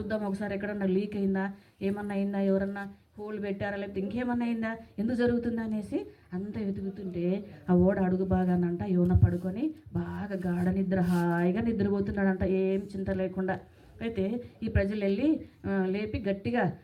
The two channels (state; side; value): identical; both; correlation 1.00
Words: ఒకసారి, ఎక్కడన్నా లీక్ అయిందా, ఏమన్నా అయిందా, ఎవరన్నా హోల్ పెట్టారా, లేకపోతే ఇంకేమన్నా అయిందా, ఎందుకు జరుగుతుందా అనేసి అంతా వెతుకుతుంటే ఆ ఓడ అడుగు బాగానంట యోన పడుకొని బాగా గాఢ నిద్ర హాయిగా నిద్రపోతున్నాడంట, ఏం చింత లేకుండా. అయితే ఈ ప్రజలు వెళ్ళి లేపి గట్టిగా,